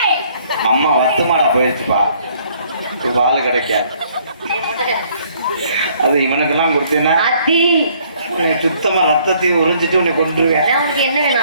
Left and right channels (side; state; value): both; inverted; correlation -0.63